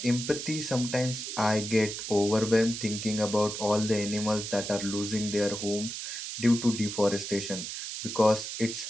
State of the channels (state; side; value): noise; right; hiss, 6 dB below the sound